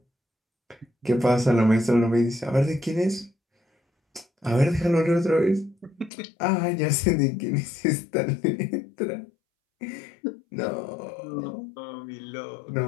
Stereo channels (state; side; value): drops out; right; at 6.1 s